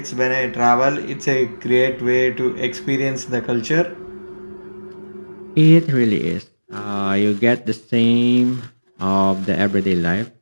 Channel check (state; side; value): inverted; both; correlation -1.00